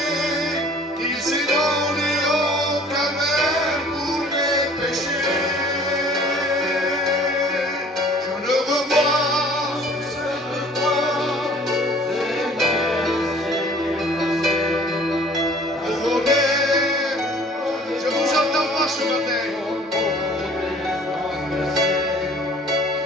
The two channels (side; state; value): both; normal; correlation 0.52